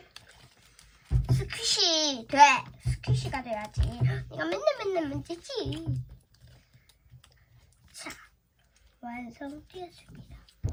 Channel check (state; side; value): identical; both; correlation 1.00